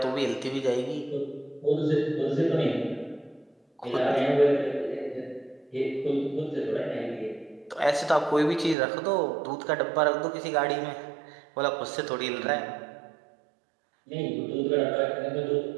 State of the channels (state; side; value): drops out; left; at 8.8 s